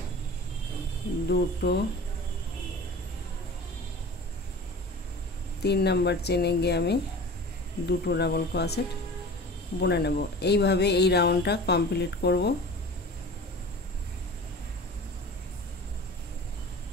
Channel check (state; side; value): normal; both; correlation 0.38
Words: দুটো 3 নাম্বার চেনে গিয়ে আমি দুটো ডাবল ক্রোশেট বুনে নেব। এইভাবে এই রাউন্ডটা কমপ্লিট করব।